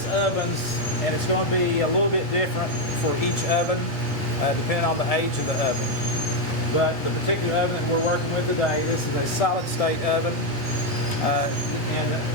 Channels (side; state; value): both; normal; correlation 0.04